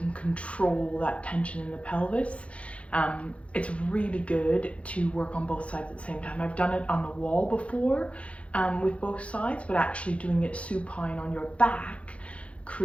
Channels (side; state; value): right; late; 0.062 ms